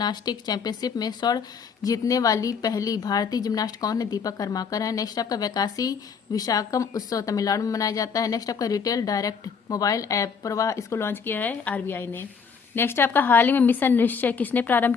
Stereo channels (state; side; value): quieter; right; 6.0 dB